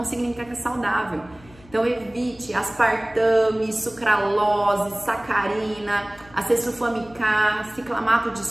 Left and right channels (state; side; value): noise; left; hum, 24 dB below the sound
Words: significa que é saudável. Então evite aspartame, sucralose, sacarina, acesulfame-K, ciclamato de